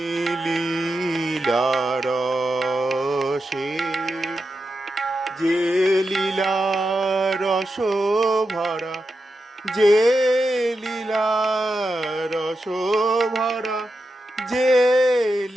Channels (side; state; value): both; normal; correlation 0.88